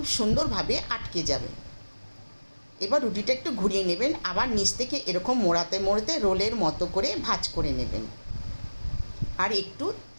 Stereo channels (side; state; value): both; inverted; correlation -1.00